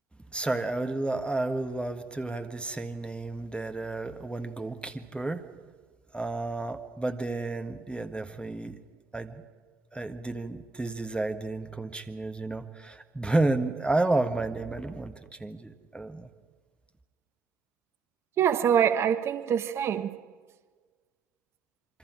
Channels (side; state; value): left; quieter; 4.0 dB